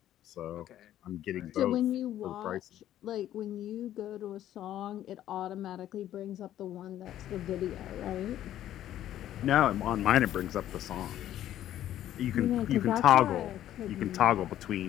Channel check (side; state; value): right; quieter; 12.2 dB